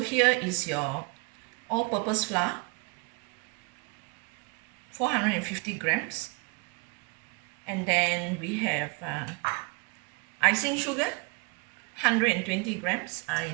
is your all-purpose flour, 450 grams, and then we have icing sugar, 120 grams. I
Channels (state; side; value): quieter; left; 29.7 dB